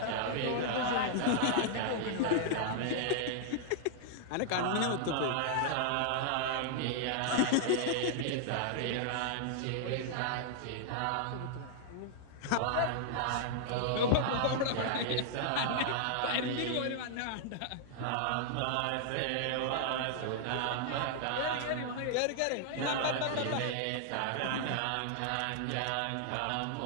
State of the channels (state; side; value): different; both; correlation -0.01